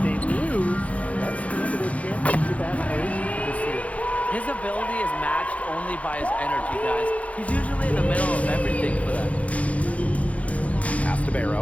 they lose, that's the end of their championship aspirations this year. His ability is matched only by his energy, guys. He's usually in the middle of everything for them. Pass to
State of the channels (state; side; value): late; right; 0.066 ms